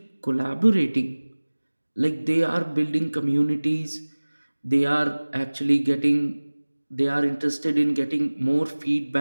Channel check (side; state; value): both; inverted; correlation -1.00